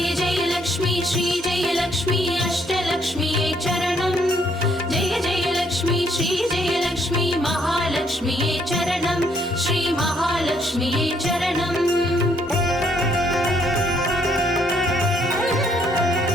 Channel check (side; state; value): both; normal; correlation 0.69